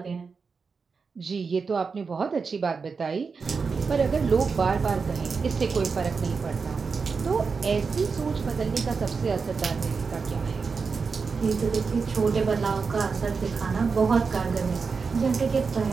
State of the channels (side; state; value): left; quieter; 5.0 dB